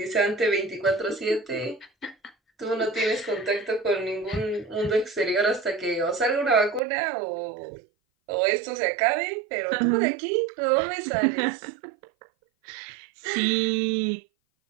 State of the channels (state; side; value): drops out; left; at 6.8 s